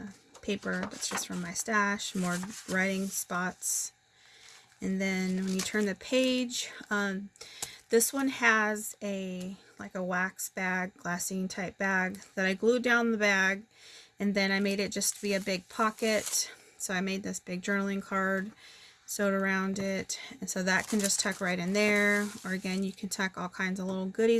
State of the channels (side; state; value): both; identical; correlation 1.00